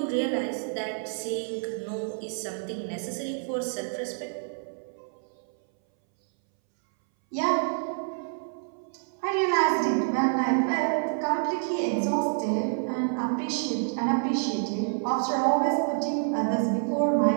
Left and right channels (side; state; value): left; silent; 59 dB below the other